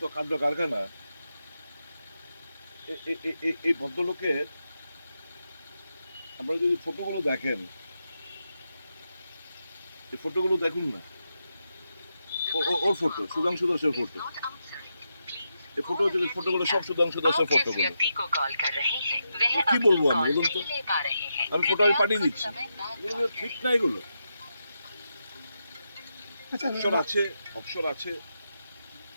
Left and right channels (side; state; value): both; inverted; correlation -0.86